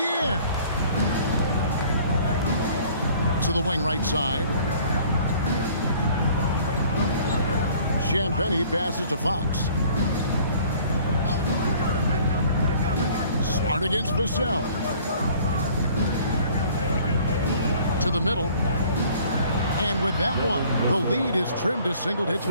To the wing right side. Champagnie passes to Fox. Smart against Vassell. To the middle. And with that one, the lead is trimmed to single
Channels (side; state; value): both; inverted; correlation -0.53